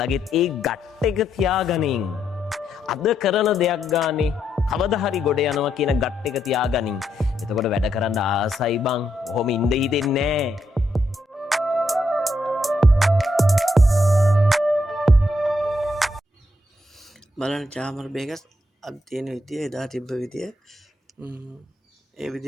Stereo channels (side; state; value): both; normal; correlation 0.79